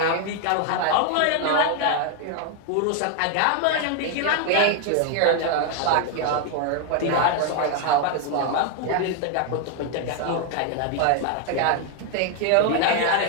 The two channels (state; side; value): different; both; correlation 0.01